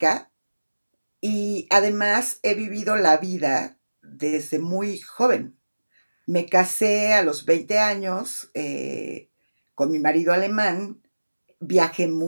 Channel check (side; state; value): both; inverted; correlation -1.00